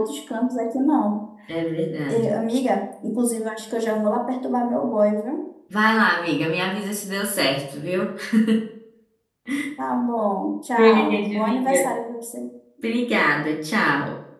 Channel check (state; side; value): identical; both; correlation 1.00